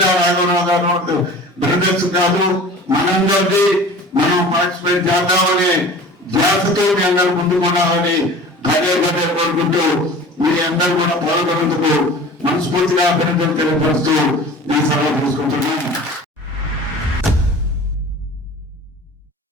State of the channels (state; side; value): normal; both; correlation 0.41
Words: రాఘవరావు గారు బ్రదర్స్ కాదు, మనందరిది మనం పార్టిసిపేట్ చేద్దామని ధ్యాసతో మీ అందరూ ముందుకున్నామని పదే పదే కోరుకుంటూ మీ అందరూ కూడా పాల్గొనేందుకు మనస్ఫూర్తిగా అభినందనలు తెలియపరుస్తూ నేను సెలవు తీసుకుంటున్నాను.